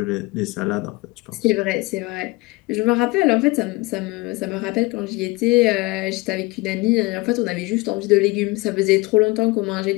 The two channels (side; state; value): right; quieter; 23.2 dB